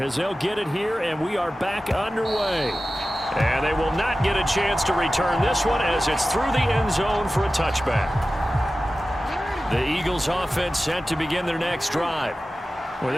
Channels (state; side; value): normal; both; correlation 0.95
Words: they'll get it here, and we are back underway. And they will not get a chance to return this one as it's through the end zone for a touchback. The Eagles offense set to begin their next drive. Well,